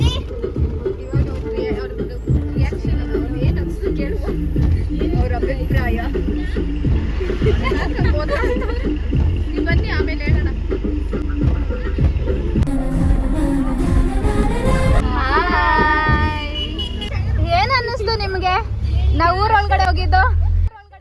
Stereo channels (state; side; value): identical; both; correlation 1.00